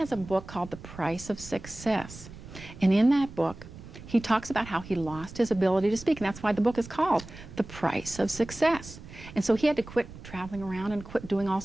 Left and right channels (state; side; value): noise; right; rumble, 16 dB below the sound